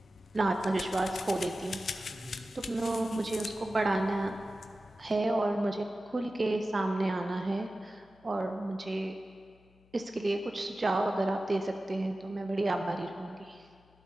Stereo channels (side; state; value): left; noise; hum, 30 dB below the sound